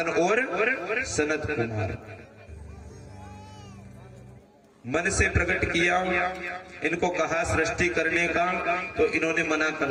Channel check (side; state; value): both; identical; correlation 1.00